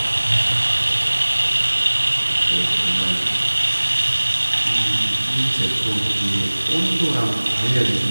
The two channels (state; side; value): inverted; both; correlation -1.00